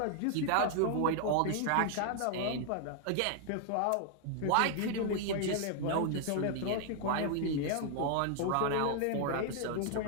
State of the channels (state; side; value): different; both; correlation 0.00